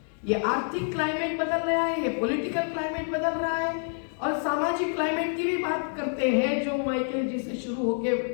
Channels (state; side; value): silent; right; 56 dB below the other